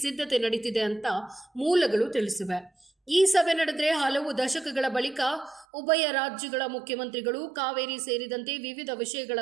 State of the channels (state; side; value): drops out; left; at 5.7 s